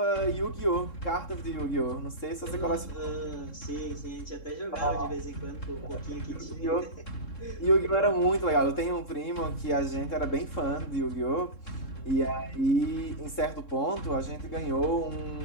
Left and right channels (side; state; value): right; late; 3.7 ms